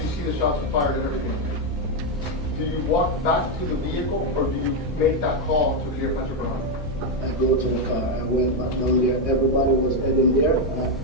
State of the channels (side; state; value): both; normal; correlation 0.04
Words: see the shots are fired and everything, do you walk back to the vehicle or do you make that call to Cleopatra Bernard? I go to the car, I went back down there, everybody was heading there, and